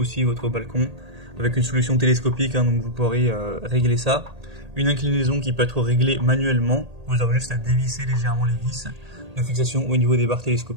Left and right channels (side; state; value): left; late; 1.8 ms